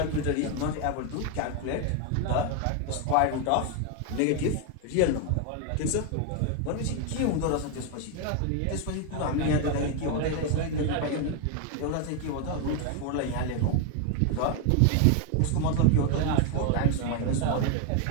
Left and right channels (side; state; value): both; different; correlation 0.01